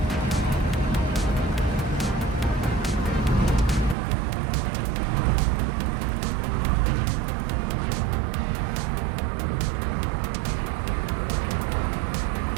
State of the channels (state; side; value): drops out; left; at 4.0 s